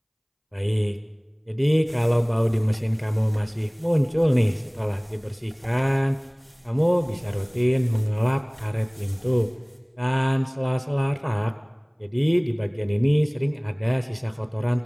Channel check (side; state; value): both; identical; correlation 1.00